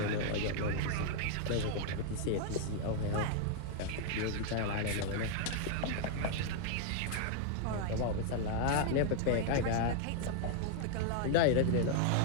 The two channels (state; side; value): different; both; correlation 0.00